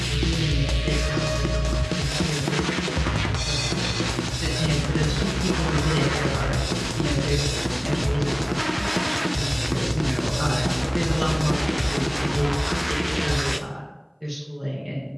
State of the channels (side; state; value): both; identical; correlation 1.00